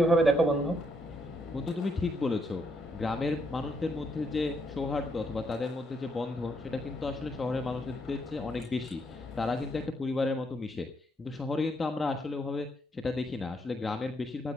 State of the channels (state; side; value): normal; both; correlation 0.75